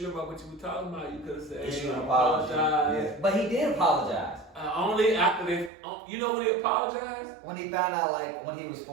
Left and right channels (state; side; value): drops out; left; at 5.7 s